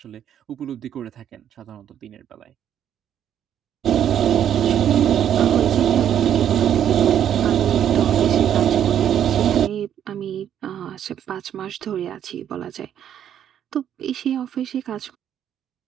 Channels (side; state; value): left; quieter; 9.8 dB